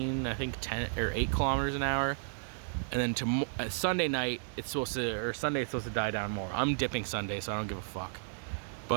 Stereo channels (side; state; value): left; silent; digital silence